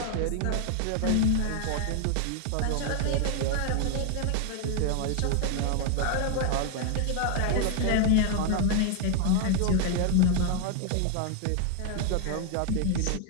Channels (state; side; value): different; both; correlation 0.01